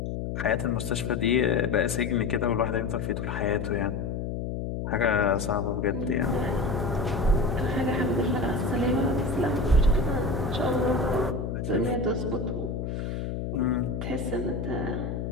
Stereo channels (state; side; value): noise; left; hum, 4 dB below the sound